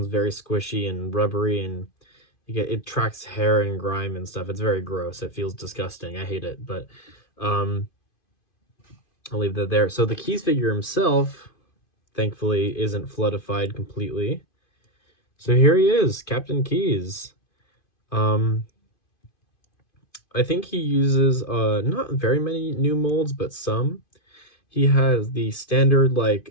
very squishy and rubbery, and it tracks hair and grime and stuff. It's very gross. It feels disgusting. I hate it, but I'll leave that there. So the Keyes figure himself, thankfully, isn't floodified completely. So here he is, Captain Keyes. I think he uses not very many new molds, but some. He has the standard, like,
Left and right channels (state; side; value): late; right; 2.5 ms